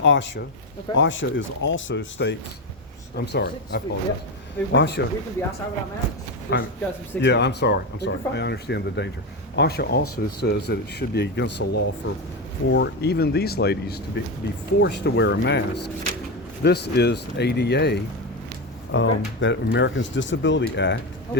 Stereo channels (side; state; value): both; normal; correlation 0.14